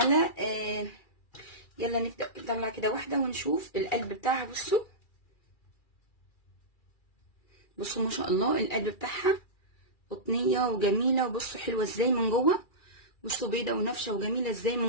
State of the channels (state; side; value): late; right; 2.4 ms